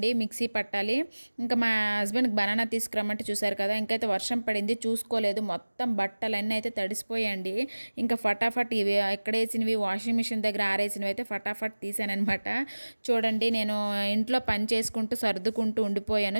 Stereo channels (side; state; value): both; inverted; correlation -1.00